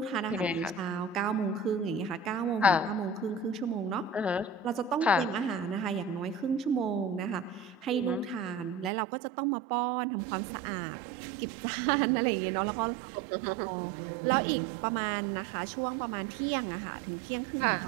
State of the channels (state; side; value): drops out; left; at 8.9 s